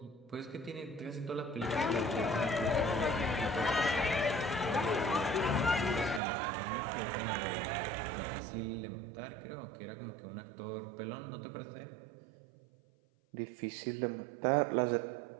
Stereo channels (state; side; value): drops out; left; at 6.2 s